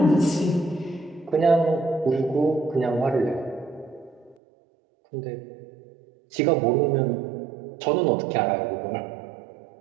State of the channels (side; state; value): left; drops out; at 4.4 s